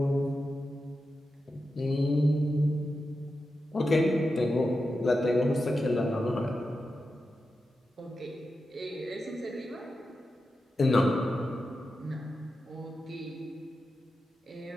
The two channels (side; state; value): both; normal; correlation 0.90